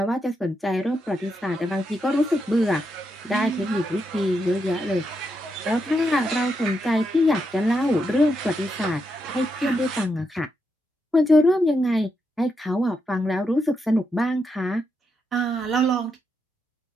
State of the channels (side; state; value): both; normal; correlation 0.83